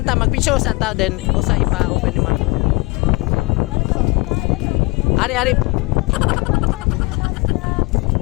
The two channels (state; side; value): quieter; right; 25.1 dB